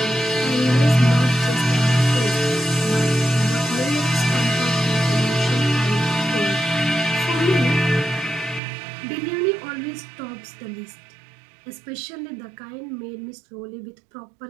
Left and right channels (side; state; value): left; drops out; at 8.6 s